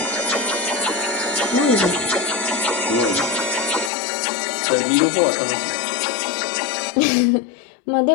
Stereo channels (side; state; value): right; drops out; at 3.9 s